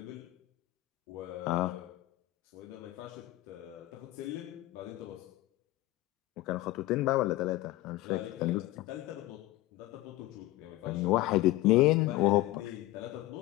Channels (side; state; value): right; quieter; 17.8 dB